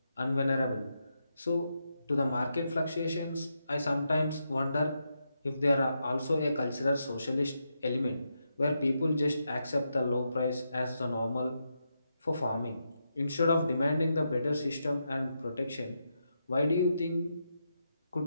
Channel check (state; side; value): inverted; both; correlation -0.84